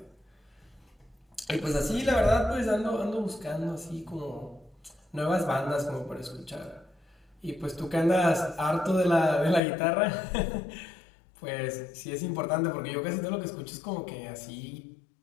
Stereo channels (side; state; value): right; drops out; at 9.6 s